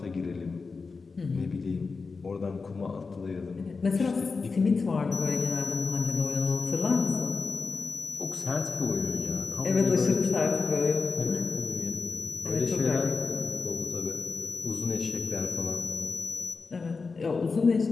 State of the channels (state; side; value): quieter; right; 4.5 dB